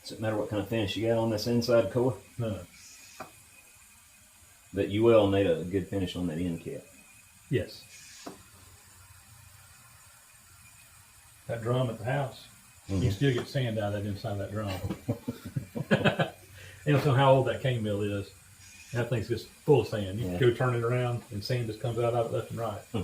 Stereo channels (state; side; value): identical; both; correlation 1.00